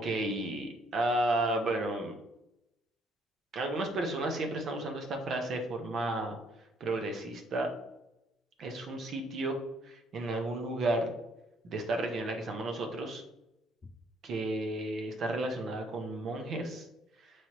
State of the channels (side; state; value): both; normal; correlation 0.66